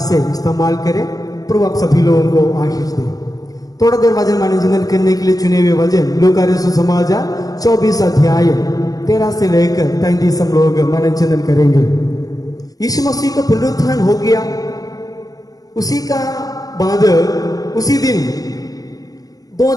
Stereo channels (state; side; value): late; right; 0.18 ms